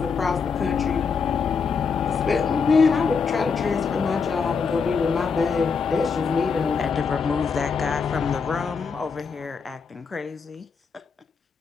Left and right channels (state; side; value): quieter; right; 5.5 dB